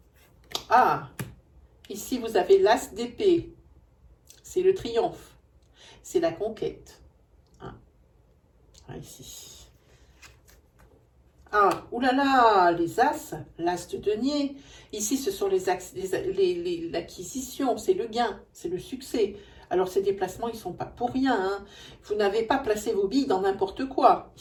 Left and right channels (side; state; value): both; identical; correlation 1.00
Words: Ah, ici vous avez l'as d'épée. C'est le triomphe. C'est la conquête. Hein. Ah, ici. Ah, oulala, les as, l'as de denier. Ici, ce sont l'acquisition, c'est le gain, c'est le succès. Alors, ces déplacements, ils ne sont pas pour rien. Hein. Vous n'avez pas placé vos billes dans n'importe quoi,